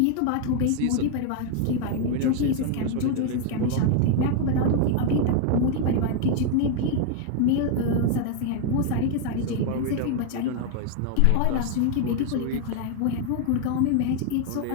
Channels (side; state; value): both; different; correlation 0.00